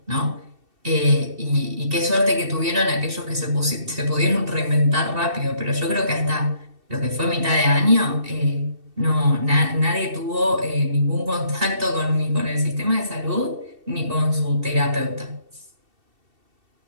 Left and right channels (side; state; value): left; late; 2.7 ms